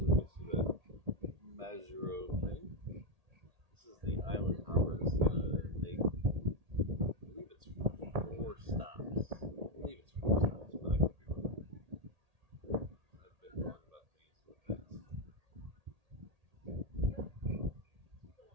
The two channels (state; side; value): late; left; 1.8 ms